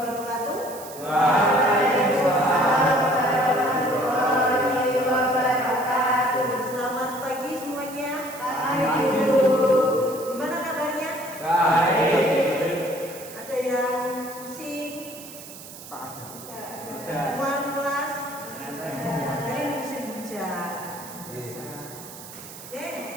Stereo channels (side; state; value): right; noise; hiss, 15 dB below the sound